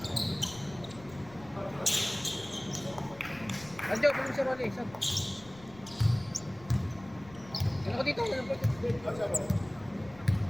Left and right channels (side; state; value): left; noise; rumble, 20 dB below the sound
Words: Anjo, pwede si Rolly. Saan? Ano ko dito?